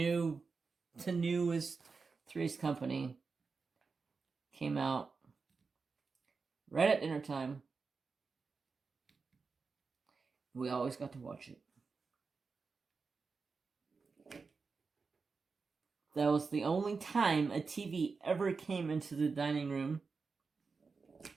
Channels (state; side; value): quieter; left; 4.7 dB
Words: newest Three's Company came out right at dinner time. We always got to watch it. That was the only time a TV ever came into the dining room.